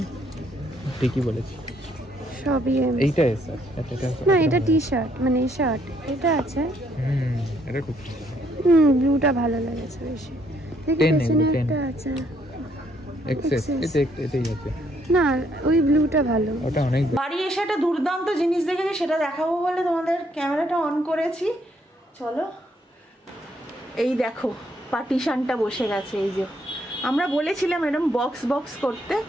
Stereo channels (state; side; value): normal; both; correlation 0.70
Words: ঠিকই বলেছি, সবই এম। এইটা এস আছে। আচ্ছা, না এটা টি শার্ট, মানে এই শার্ট এটা আছে। এটা খুব ব্লুটা ভালো লাগেছে বেশি। দেখি পেছনে একটা আছে এক্সেস, এটাই আছে না, ওই ব্লুটা ভালো। ওটা অনেক। বাড়ি এসে একটা দুর্দান্ত জিনিস দেখেছি, সেটা দেখাবো বলে তোমাদের ক্যামেরাটা অন করেছি। চলো, এই দেখো পার্টিশনটা বসে গেছে। এই যে আমরা বলেছিলাম এরকম বক্স বক্স করতে,